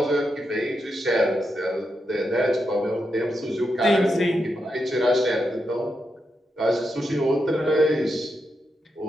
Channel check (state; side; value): normal; both; correlation 0.85